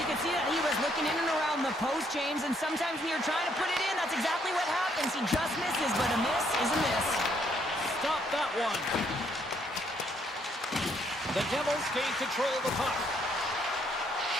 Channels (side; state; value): both; normal; correlation 0.70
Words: can see that he was looking in and around the post, James, and sometimes when you're trying to put it in, that's exactly what happens. He just misses, but a miss is a miss. Stop that one. The Devils gain control of the puck.